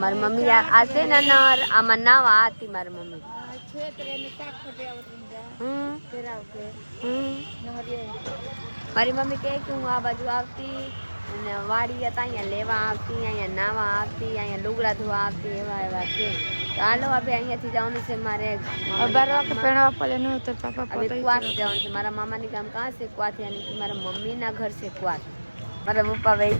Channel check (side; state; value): both; inverted; correlation -1.00